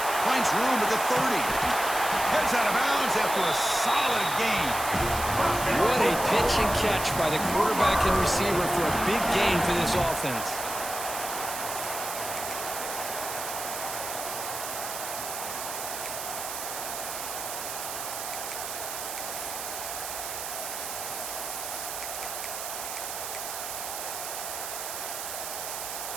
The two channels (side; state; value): right; noise; hiss, 6 dB below the sound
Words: Finds room at the 30. Heads out of bounds after a solid gain. What a pitch and catch by the quarterback and receiver for a big gain for this offense.